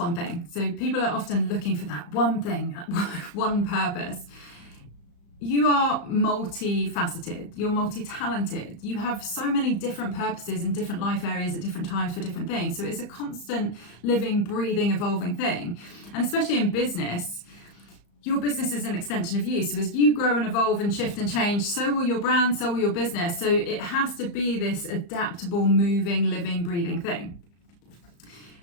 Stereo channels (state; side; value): late; right; 34 ms